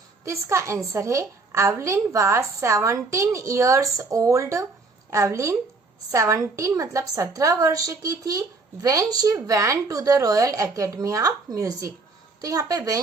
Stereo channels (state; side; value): quieter; left; 3.8 dB